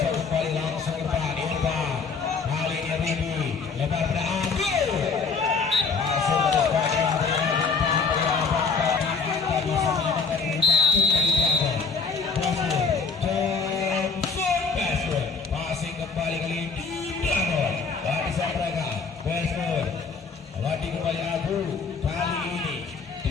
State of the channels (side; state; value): right; quieter; 4.8 dB